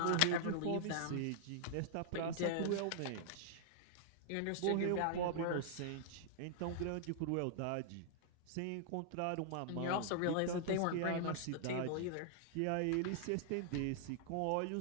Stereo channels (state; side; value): different; both; correlation -0.01